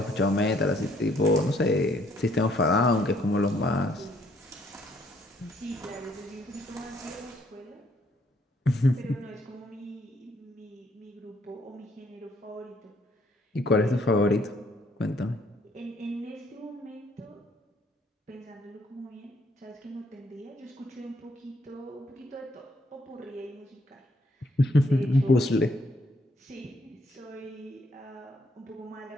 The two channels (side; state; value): both; normal; correlation 0.67